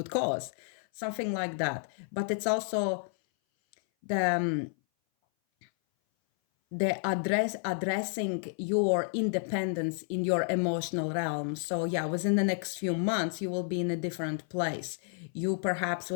cause, something like that. But it's also the addressing your independence in your emotional realm. So yeah, within the next few months, you will be in a different place. You perhaps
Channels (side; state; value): right; silent; 57 dB below the other